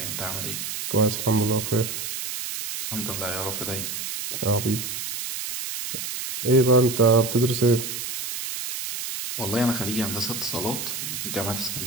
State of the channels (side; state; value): right; noise; hiss, 5 dB below the sound